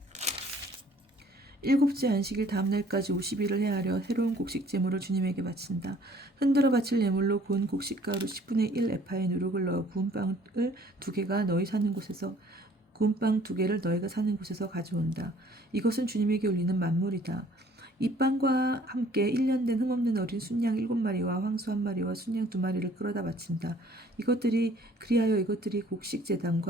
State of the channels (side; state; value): both; normal; correlation 0.57